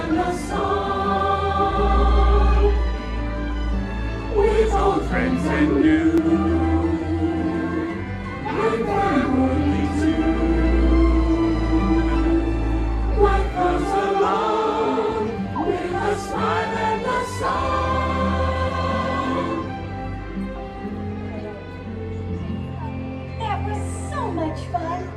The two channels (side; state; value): both; identical; correlation 1.00